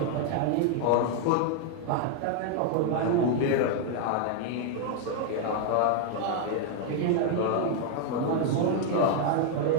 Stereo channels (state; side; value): different; both; correlation 0.00